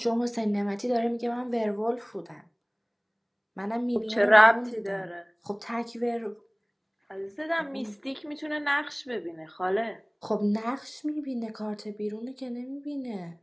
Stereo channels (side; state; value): both; identical; correlation 1.00